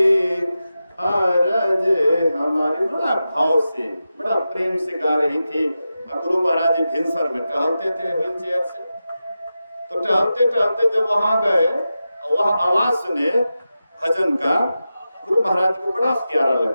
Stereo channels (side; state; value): both; inverted; correlation -0.92